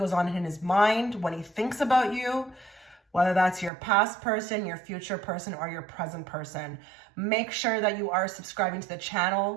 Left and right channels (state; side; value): drops out; left; at 3.7 s